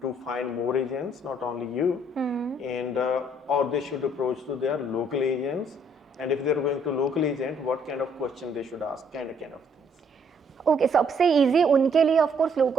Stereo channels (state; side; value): normal; both; correlation 0.66